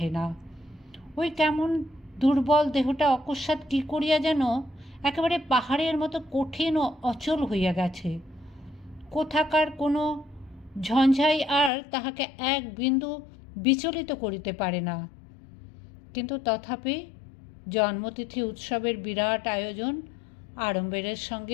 না। ওই কেমন দুর্বল দেহটা অকস্মাৎ কী করিয়া যেন একেবারে পাহাড়ের মতো কঠিন ও অচল হইয়া গেছে। কোথাকার কোনো ঝঞ্ঝাই আর তাহাকে এক বিন্দু বিচলিত করিতে পারে না। কিন্তু তথাপি জন্মতিথি উৎসবের বিরাট আয়োজন আড়ম্বরের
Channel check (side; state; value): right; drops out; at 11.7 s